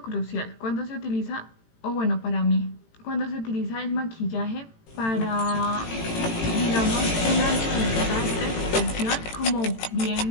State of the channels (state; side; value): late; right; 18 ms